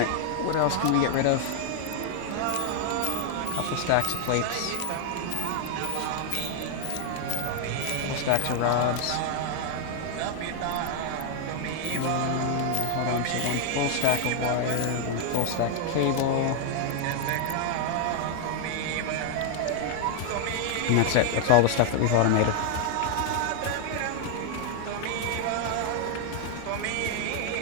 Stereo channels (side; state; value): both; different; correlation 0.00